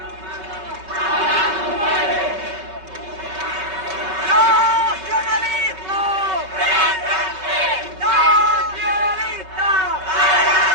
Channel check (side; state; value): left; late; 5.3 ms